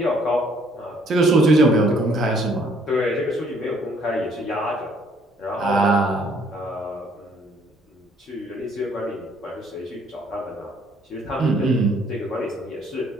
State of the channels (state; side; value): normal; both; correlation 0.63